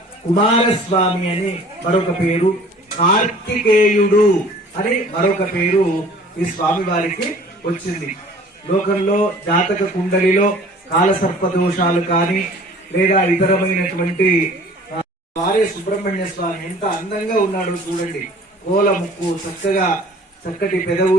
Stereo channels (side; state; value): both; normal; correlation 0.49